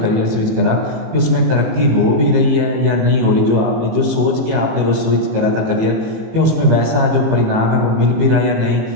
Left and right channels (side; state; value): left; late; 18 ms